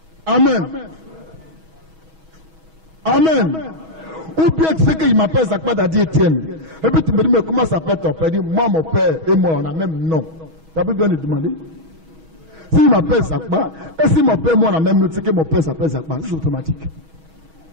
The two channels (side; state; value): left; late; 6.2 ms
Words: Amen. Amen. Ou bien tu sais qu'il m'appelle Zakpa Dadi Etienne. Et puis tu me dis, mais comment s'appelle ton père? Il dit, moi, mon père et moi, on a même nom. Tu as plus besoin de demander. S'il m'appelle Zakpa, et si mon père et moi, on a même nom, tu sais que mon père s'appelle Zakpa. C'est automatique.